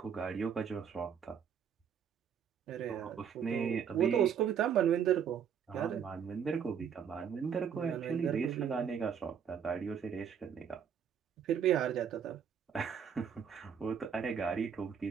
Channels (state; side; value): quieter; left; 7.7 dB